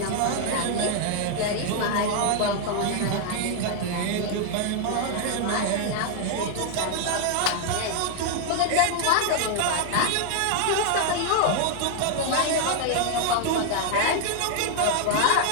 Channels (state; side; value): different; both; correlation 0.00